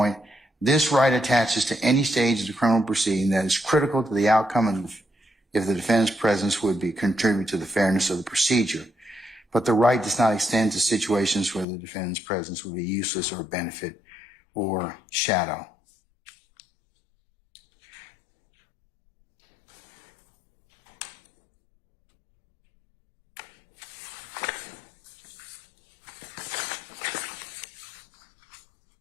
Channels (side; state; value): right; drops out; at 11.7 s